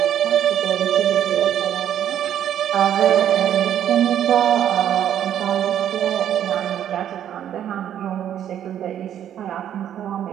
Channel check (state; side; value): quieter; left; 10.3 dB